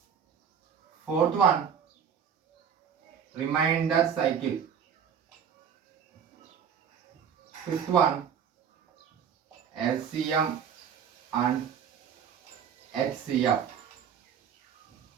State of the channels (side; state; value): left; quieter; 7.7 dB